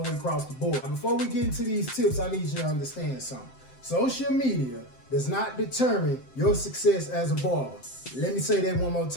the way across the board. Now, before we get into these tips, I need you to understand something. Social media does not determine your success as a barber. Let me say that one more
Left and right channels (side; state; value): right; late; 7.7 ms